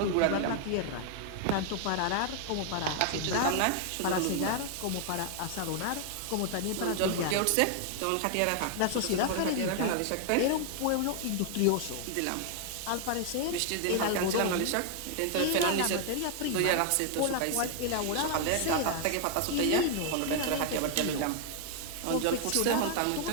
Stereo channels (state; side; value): different; both; correlation 0.00